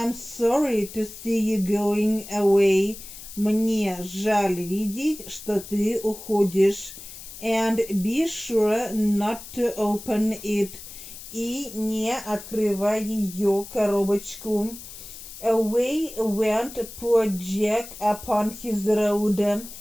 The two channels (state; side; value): noise; left; hiss, 14 dB below the sound